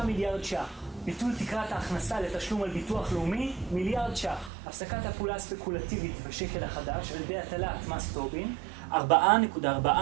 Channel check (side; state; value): left; drops out; at 4.5 s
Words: ש"ח. ביטול תקרת ההכנסה לתשלום על ביטוח לאומי, מיליארד ש"ח. הפסקת הפעולה הספקולטיבית בשקל החדש על ידי הטלת מס טובין,